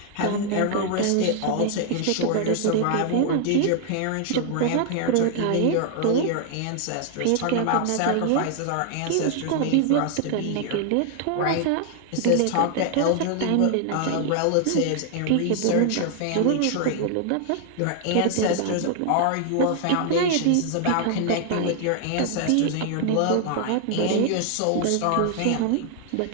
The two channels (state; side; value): different; both; correlation 0.00